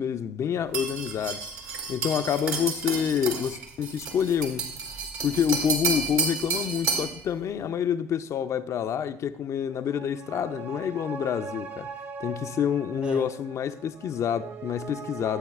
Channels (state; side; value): quieter; right; 4.8 dB